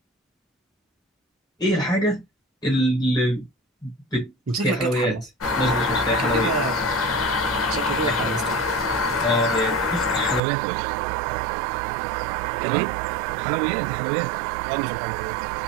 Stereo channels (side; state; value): left; drops out; at 10.4 s